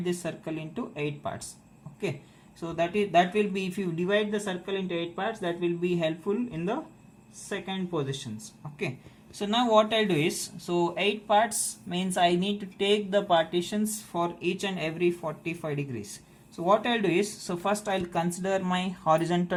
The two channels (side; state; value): both; identical; correlation 1.00